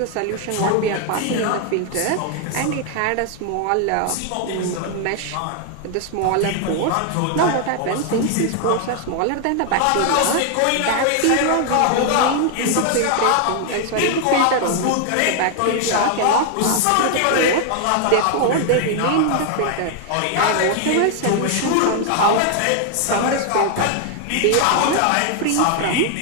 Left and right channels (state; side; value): different; both; correlation 0.00